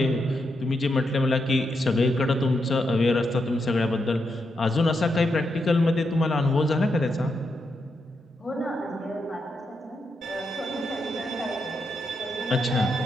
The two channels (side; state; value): both; normal; correlation 0.83